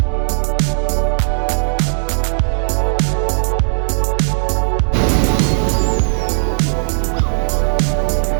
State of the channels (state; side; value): silent; left; digital silence